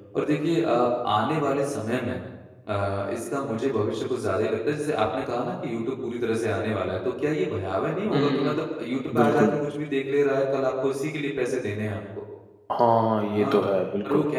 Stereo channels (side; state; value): both; identical; correlation 1.00